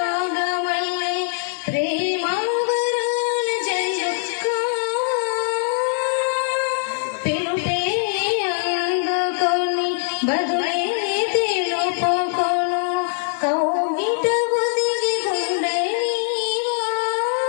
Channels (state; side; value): silent; right; digital silence